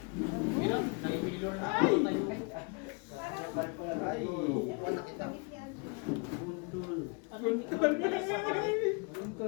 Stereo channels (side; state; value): right; quieter; 33.5 dB